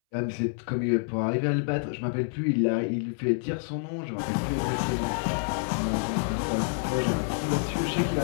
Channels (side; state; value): right; silent; 59 dB below the other